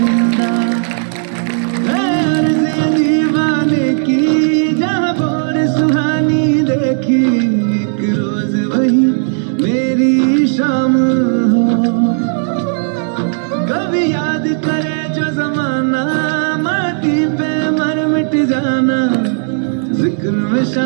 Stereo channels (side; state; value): left; silent; digital silence